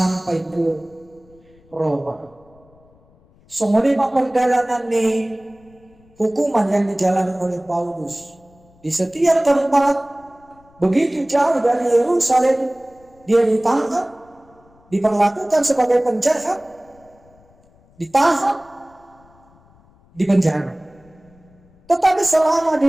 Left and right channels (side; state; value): left; noise; rumble, 30 dB below the sound